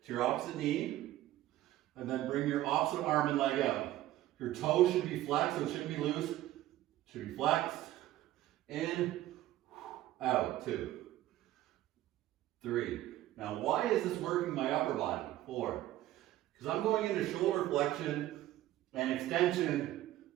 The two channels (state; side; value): quieter; left; 14.6 dB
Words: to your opposite knee, and then bring your opposite arm and leg out. Your toe should be flexed, so it shouldn't be loose. It should be flexed. In, out. 2, 3. Now, why is this working my upper body? 4. Because I'm going into shoulder flexion and extension